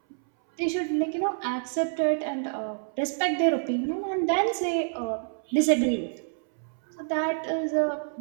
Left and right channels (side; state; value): left; silent; 60 dB below the other